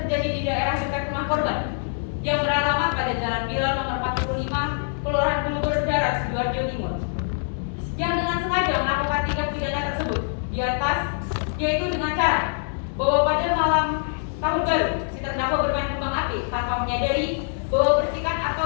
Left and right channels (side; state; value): right; silent; 62 dB below the other